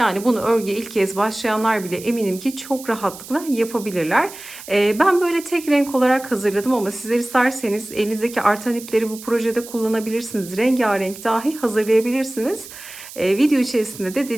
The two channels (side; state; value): right; noise; hiss, 15 dB below the sound